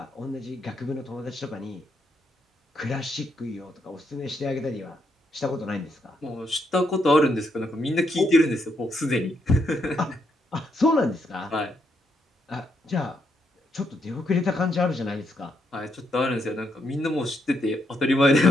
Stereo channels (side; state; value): both; normal; correlation 0.77